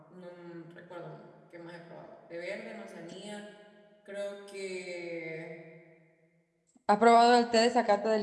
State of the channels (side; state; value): both; identical; correlation 1.00